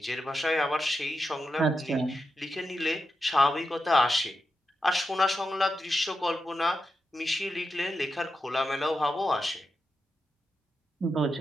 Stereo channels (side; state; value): both; normal; correlation 0.88